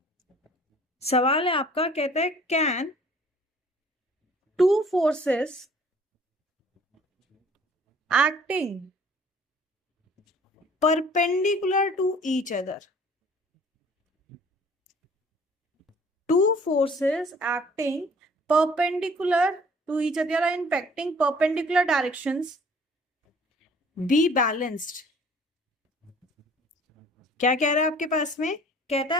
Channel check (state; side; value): normal; both; correlation 0.53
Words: सवाल है आपका, कहते हैं can two forces acting perpendicular to each other, two forces acting perpendicular to each other are impacting perpendicular directions, be balanced। क्या कह रहा है आपके पास में? कहता